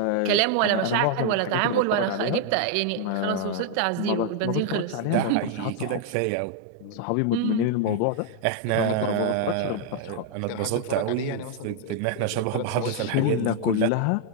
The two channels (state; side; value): different; both; correlation 0.00